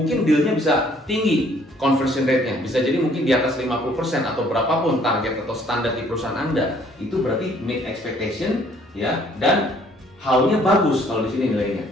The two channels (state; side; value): normal; both; correlation 0.61